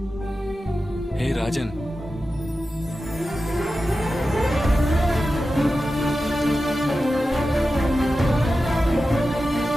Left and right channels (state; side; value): normal; both; correlation 0.92